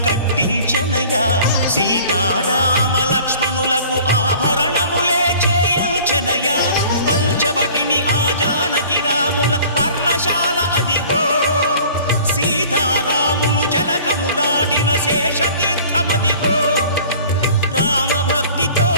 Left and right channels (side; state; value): both; inverted; correlation -0.47